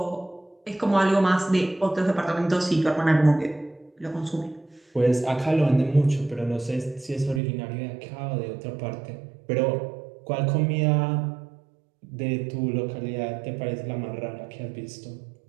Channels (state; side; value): drops out; left; at 7.4 s